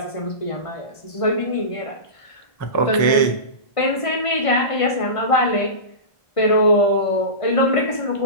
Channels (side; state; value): right; late; 1.5 ms